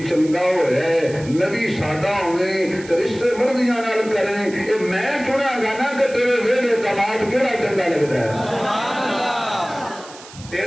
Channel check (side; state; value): right; noise; hiss, 19 dB below the sound